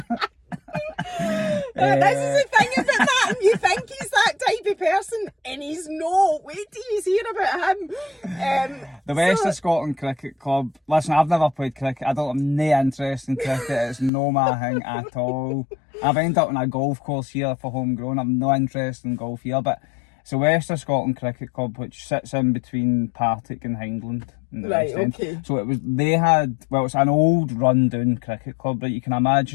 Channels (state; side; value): drops out; right; at 14.1 s